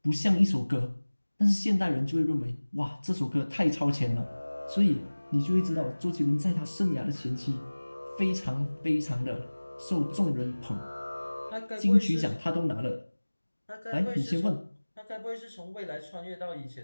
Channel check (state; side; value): inverted; both; correlation -1.00